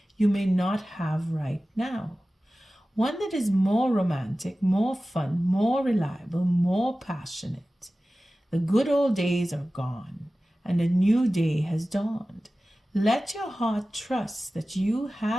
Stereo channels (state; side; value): normal; both; correlation 0.96